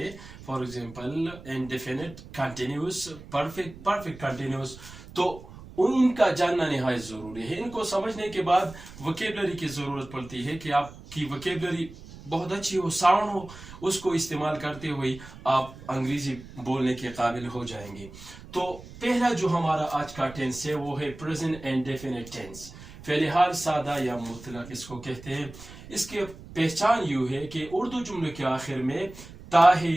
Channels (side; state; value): right; noise; rumble, 17 dB below the sound